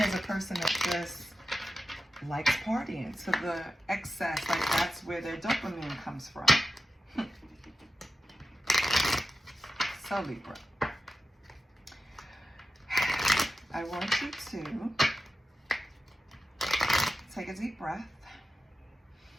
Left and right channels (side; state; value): both; normal; correlation 0.92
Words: as a person that just likes partying to the excess, like that's where their dopamine comes from. So Libra, I want you to take a deep breath.